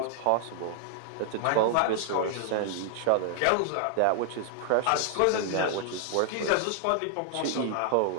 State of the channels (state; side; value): different; both; correlation 0.00